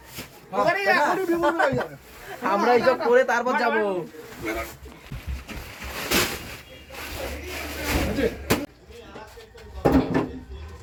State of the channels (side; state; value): both; identical; correlation 1.00